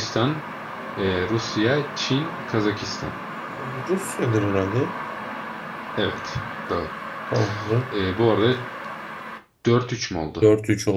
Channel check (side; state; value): both; identical; correlation 1.00